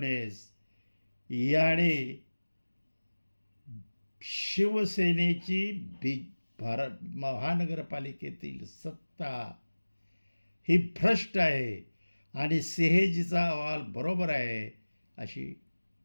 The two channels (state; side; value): inverted; both; correlation -1.00